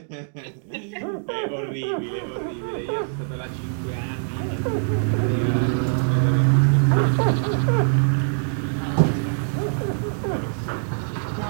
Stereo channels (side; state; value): left; silent; digital silence